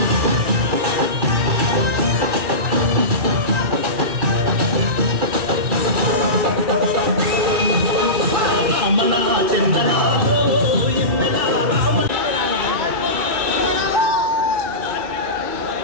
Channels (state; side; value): late; left; 2.4 ms